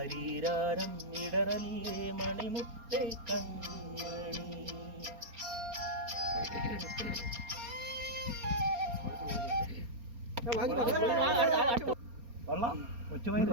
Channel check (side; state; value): left; late; 4.3 ms